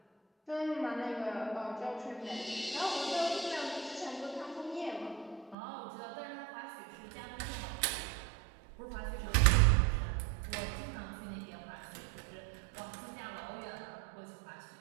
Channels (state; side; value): drops out; left; at 5.6 s